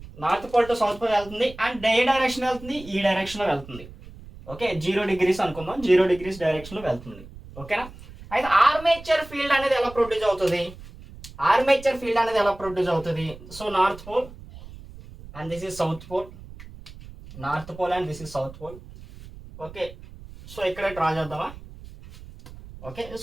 అండ్ ఏ డైరెక్షన్ వెళ్తుంది? ఈ డైరెక్షన్లో వెళ్తుంది. ఓకే, 0 degrees అనుకుందాం, 0 degrees డైరెక్షన్లో వెళ్తుంది. ఓకేనా, అయితే ఆర్మేచర్ ఫీల్డ్ అనేది ఎలా ప్రొడ్యూస్ అవుతుంది? So north pole and this is south pole, north pole and this is south pole. Okay, so ఇక్కడ డ్రా చేద్దామా? ఓకే,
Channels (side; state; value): right; noise; rumble, 17 dB below the sound